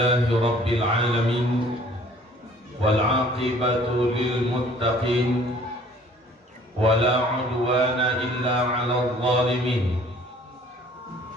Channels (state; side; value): normal; both; correlation 0.54